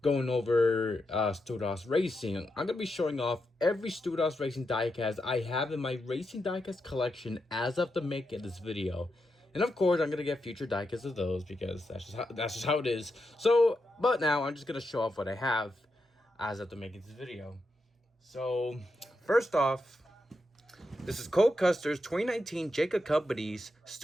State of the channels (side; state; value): both; normal; correlation 0.85